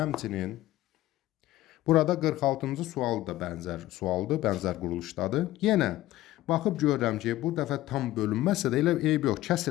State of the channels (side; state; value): right; quieter; 15.7 dB